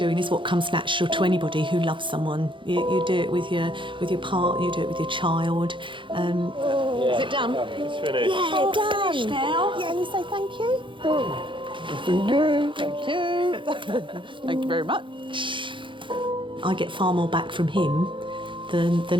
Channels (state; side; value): late; left; 0.24 ms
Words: is what comes natural to anybody who loves someone. You do it with your partner, you do it with your child. Is it done? It's finished. Yeah, done. Finished now. Yeah, you say thank you. Thank you. Thank you. Thank you very much. I get far more back from him